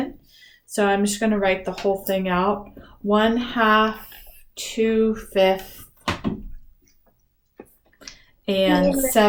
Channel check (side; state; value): both; identical; correlation 1.00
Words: So I'm just going to write the whole thing out. 1/2, 2/5, and